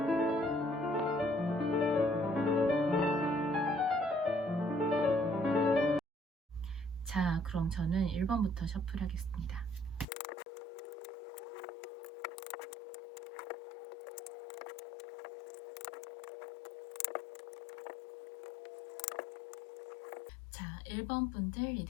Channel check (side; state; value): right; drops out; at 10.1 s